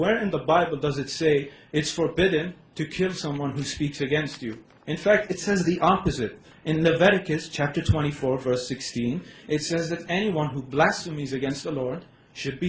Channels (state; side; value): identical; both; correlation 1.00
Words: in the Bible does it say it's forbidden to kill someone who speaks against you? In fact, it says the opposite. In Leviticus chapter 24, verse 16, it says that anyone who blasphemes against the Lord should